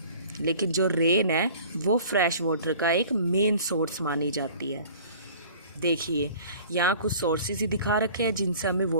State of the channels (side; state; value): both; inverted; correlation -0.47